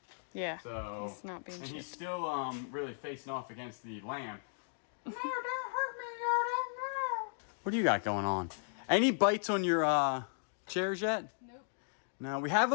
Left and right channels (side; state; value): right; silent; digital silence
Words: Yeah. So he's not being and shipped. he's still really facing off against the lamp. No, don't hurt me, Yoda. No. What do you got going on? Any bites on your chairs yet? Nope. No, we have